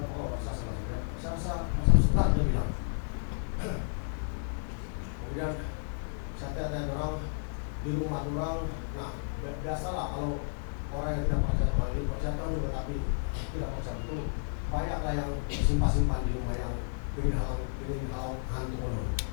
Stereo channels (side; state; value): right; silent; digital silence